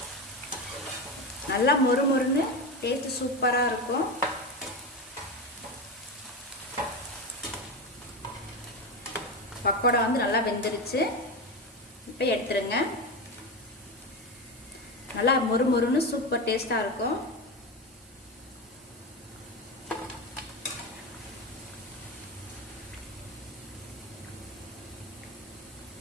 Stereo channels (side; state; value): both; normal; correlation 0.19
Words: நல்லா மொறு மொறுன்னு டேஸ்ட் சூப்பராக இருக்கும். பக்கோடா நல்லா வெந்துருச்சு. இப்போ எடுத்துருங்க. நல்லா மொறு மொறுன்னு சூப்பர் டேஸ்டாக இருக்கும்.